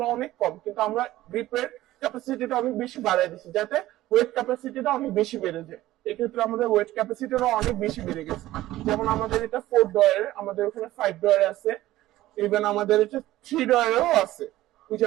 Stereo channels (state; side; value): quieter; left; 15.7 dB